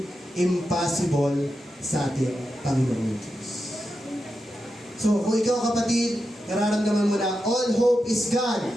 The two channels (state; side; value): normal; both; correlation 0.88